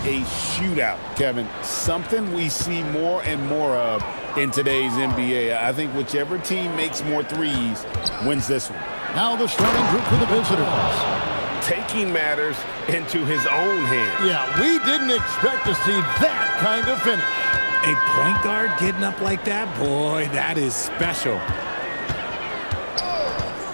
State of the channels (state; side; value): inverted; both; correlation -1.00